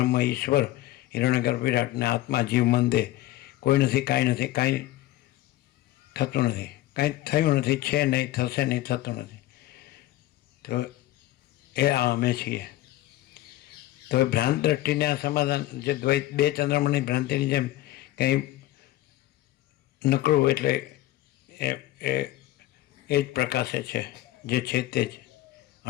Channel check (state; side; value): quieter; right; 15.5 dB